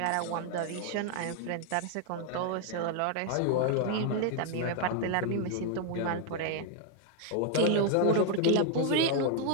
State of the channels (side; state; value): both; different; correlation 0.00